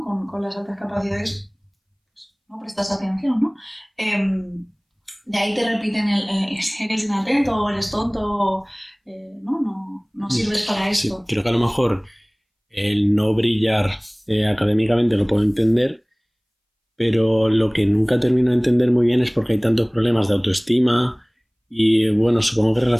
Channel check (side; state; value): both; identical; correlation 1.00